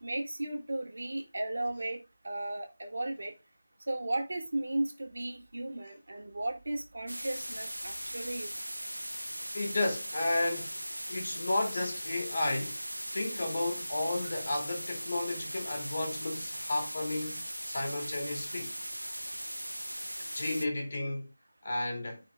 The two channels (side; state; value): both; inverted; correlation -0.95